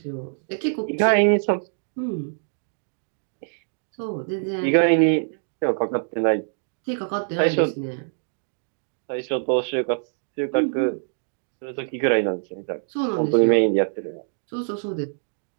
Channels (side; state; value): left; silent; digital silence